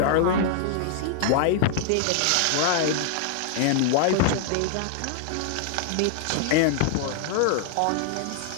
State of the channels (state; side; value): different; both; correlation -0.01